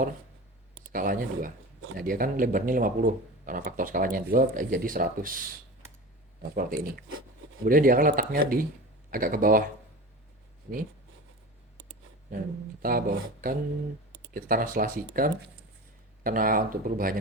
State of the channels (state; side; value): normal; both; correlation 0.32